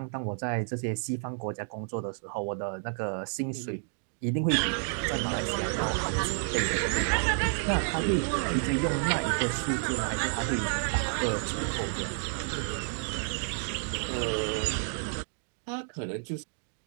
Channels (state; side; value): silent; left; 58 dB below the other